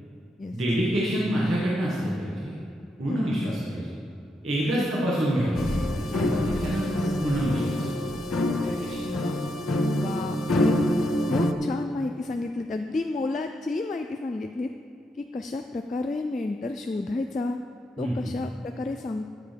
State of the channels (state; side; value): normal; both; correlation 0.82